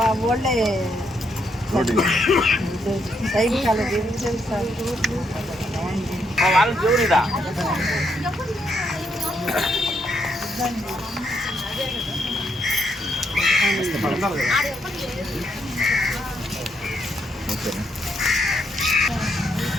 వాళ్ళే సైడ్ కాలు తిరుగుతుంది సార్.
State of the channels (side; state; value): both; normal; correlation 0.76